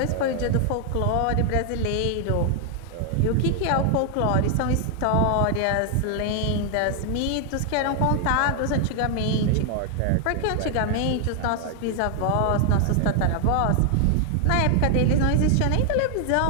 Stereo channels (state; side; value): different; both; correlation 0.00